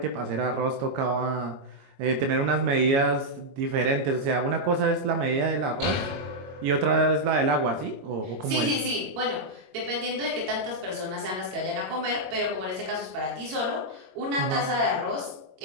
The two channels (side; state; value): left; late; 22 ms